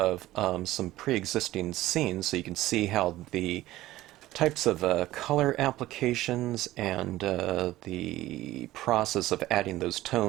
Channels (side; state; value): left; quieter; 16.1 dB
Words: some pre-existing scenes so you can see how the types of color applications and the process of adding those